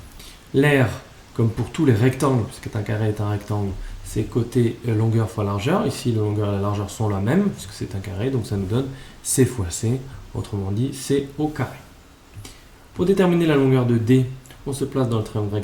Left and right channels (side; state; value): both; identical; correlation 1.00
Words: L'aire, comme pour tous les rectangles, puisque un carré est un rectangle, c'est côté longueur fois largeur. Ici, la longueur et la largeur sont la même, puisque c'est un carré, donc ça nous donne C fois C, autrement dit C au carré. Pour déterminer la longueur de D, on se place dans le triangle